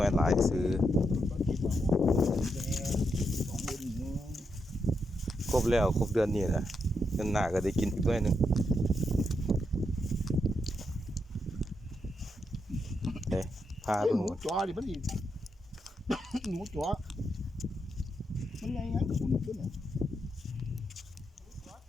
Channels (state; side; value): normal; both; correlation 0.82